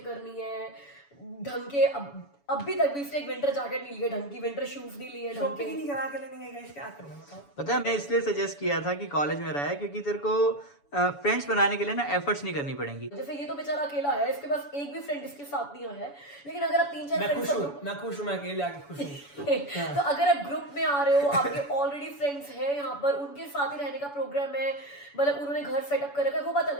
करनी है ढंग के। अब भी तक भी इसने एक विंटर जैकेट नहीं लिया ढंग की, विंटर शूज नहीं लिए ढंग शॉपिंग के। नहीं करा के लेने गए, क्या करूँ बताओ। पता है मैं इसलिए सजेस्ट किया था कि कॉलेज में रहा है क्योंकि तेरे को फ्रेंड्स बनाने के लिए ना एफर्ट्स नहीं करनी पड़ेंगी। जैसे ये तो बेचारा अकेला है, इसके पास एक भी फ्रेंड इसके साथ नहीं आया है, लेकिन अगर आप 3-4 मैं खुश फ्रेंड्स हूँ, मैं खुश हूँ, मैं अकेले आके खुश हूँ। तो अगर आप ग्रुप में आ रहे हो, आपके ऑलरेडी फ्रेंड्स हैं यहाँ पर, उनके साथ ही रहने का प्रोग्राम है, मतलब उन्होंने घर सेटअप कर रखा है, वो बात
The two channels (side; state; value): right; late; 7.0 ms